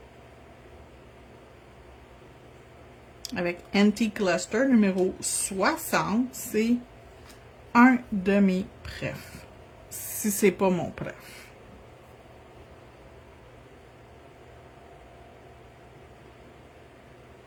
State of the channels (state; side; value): identical; both; correlation 1.00